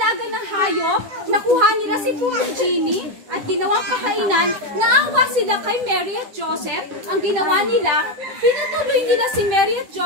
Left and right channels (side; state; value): left; late; 10 ms